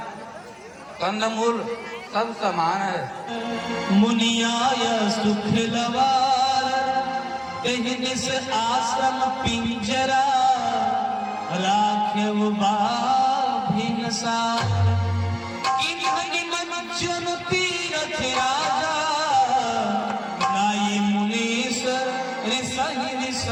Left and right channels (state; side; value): identical; both; correlation 1.00